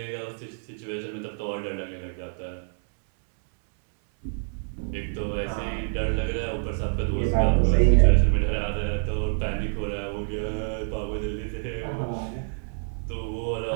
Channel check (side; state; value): left; silent; 60 dB below the other